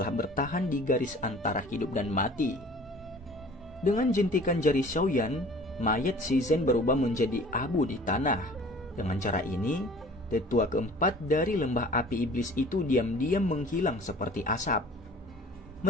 bertahan di garis antara hidup dan mati. Dengan jentikan jari Xiaoyan, mayat Si Zhen berubah menjadi abu di tanah. Dengan cara ini, tetua keempat dari lembah api iblis itu diam-diam menghilang seperti asap.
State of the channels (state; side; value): normal; both; correlation 0.47